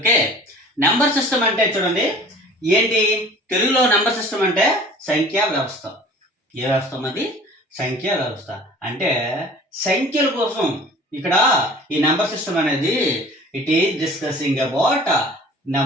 number system అంటే చూడండి ఏంటి తెలుగులో నంబర్ సిస్టమ్ అంటే సంఖ్యా వ్యవస్థ. ఏ వ్యవస్థ అది? సంఖ్యా వ్యవస్థ. అంటే సంఖ్యల కోసం ఇక్కడ ఈ నంబర్ సిస్టమ్ అనేది it is discussing about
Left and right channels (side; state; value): both; normal; correlation 0.46